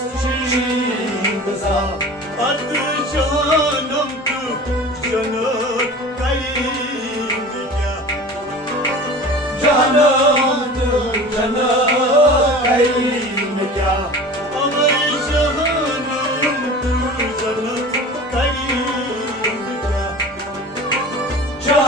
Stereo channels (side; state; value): both; normal; correlation 0.39